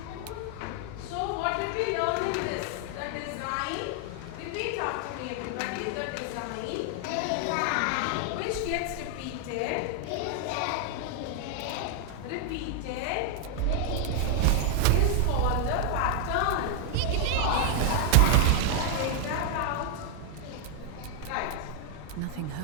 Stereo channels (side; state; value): both; different; correlation 0.00